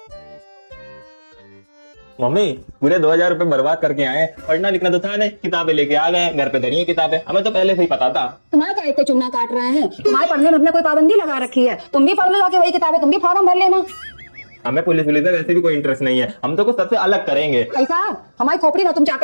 मम्मी पूरे 2000 रुपए बर्बाद करके आए। पढ़ना लिखना तो था नहीं, किताबें लेके आ गए, घर पे धरी है किताबें। हमें तो पहले से ही पता था। तुम्हारे का इतने चुन्ना काट रहे हैं, तुम्हारे पढ़ने में हमने कोई पाबंदी लगा रखी है? तुम भी पढ़ लो जाके वही किताबें, तुम भी फॉर्म भर लेना। हमें पुलिस में वैसे भी कोई इंटरेस्ट नहीं है, हम तो कुछ सबसे अलग करेंगे। ऐसा हमारी खोपड़ी ना तुम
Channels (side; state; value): both; inverted; correlation -1.00